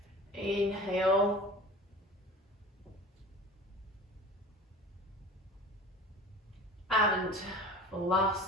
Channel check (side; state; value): both; normal; correlation 0.39